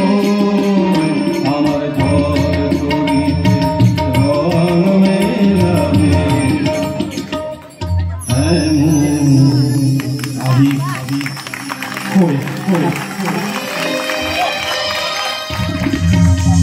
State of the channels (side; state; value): both; identical; correlation 1.00